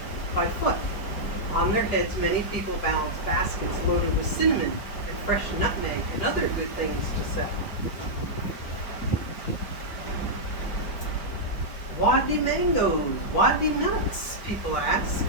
by foot. On their heads, many people balance baskets loaded with cinnamon and fresh nutmeg and other good things to sell. Wadi mangoes, wadi nuts, people ask.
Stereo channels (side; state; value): right; late; 4.8 ms